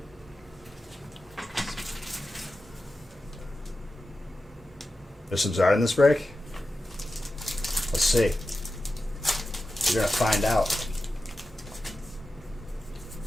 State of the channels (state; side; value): normal; both; correlation 0.92